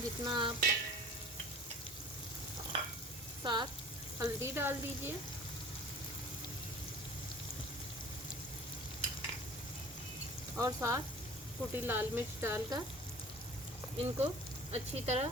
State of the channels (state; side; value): normal; both; correlation 0.44